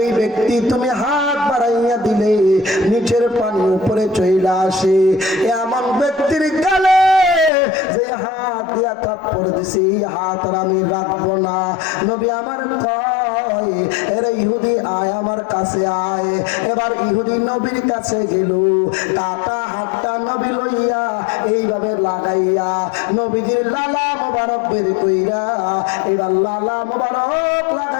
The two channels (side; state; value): right; drops out; at 7.5 s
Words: ব্যক্তি তুমি হাত বাড়াইয়া দিলে নিচের পানি উপরে চইলা আসে, এমন ব্যক্তির গালে যে হাত দিয়া থাপ্পড় দিছি হাত আর আমি রাখবো না। নবী আমার কয়, এরে ইহুদি আয় আমার কাছে আয়। এবার ইহুদি নবীর কাছে গেল, কাটা হাতটা নবী লইয়া এইভাবে লাগাইয়া নবীজির লালা মোবারক বের কইরা এবার লালা মোবারক